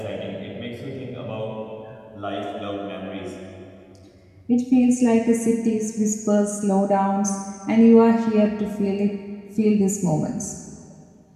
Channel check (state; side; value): identical; both; correlation 1.00